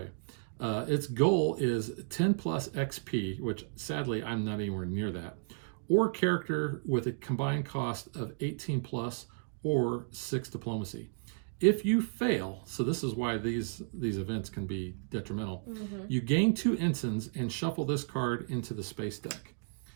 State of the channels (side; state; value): left; silent; digital silence